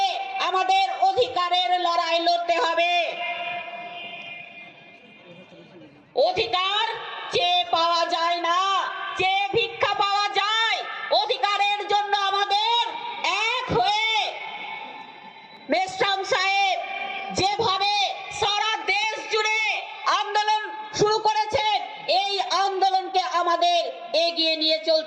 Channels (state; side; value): identical; both; correlation 1.00